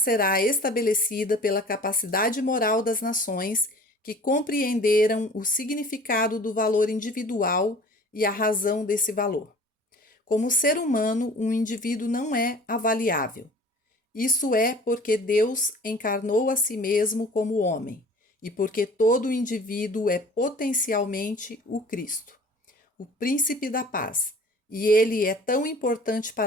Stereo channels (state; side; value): normal; both; correlation 0.46